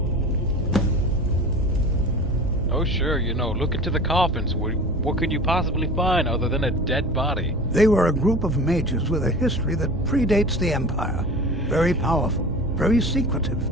Oh sure, you know, look into the coffins. What could you possibly find other than a dead body? They were a group of mages with a history that predates the Empire. Very powerful, very secretive.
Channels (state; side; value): noise; right; hum, 10 dB below the sound